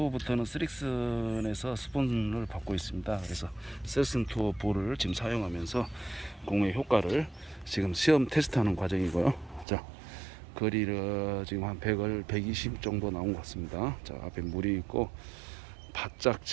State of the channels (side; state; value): left; drops out; at 9.7 s